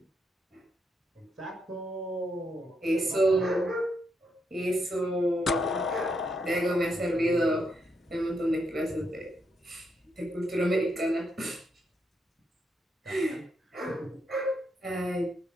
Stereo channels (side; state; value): both; normal; correlation 0.80